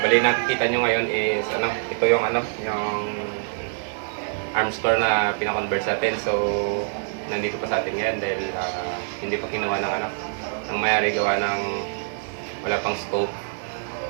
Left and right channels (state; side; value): silent; left; digital silence